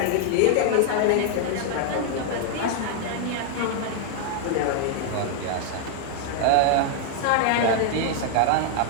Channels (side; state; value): both; different; correlation 0.00